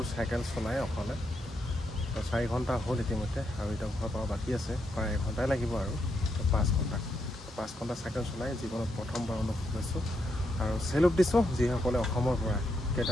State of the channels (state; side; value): normal; both; correlation 0.80